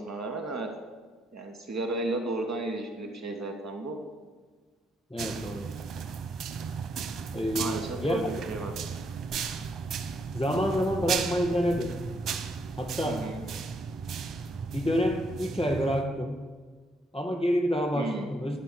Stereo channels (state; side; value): normal; both; correlation 0.75